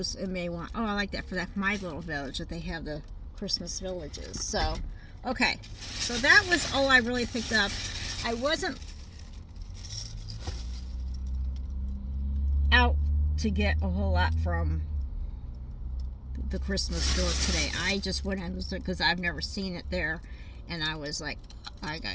and may want, oh, I like that for that my little village that they have the Christmas villages. So okay, so that was all I really picked up. I wasn't out to get a whole lot from the Christmas store today. I just went in because I've never seen it there, and I was like, I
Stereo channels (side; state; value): both; identical; correlation 1.00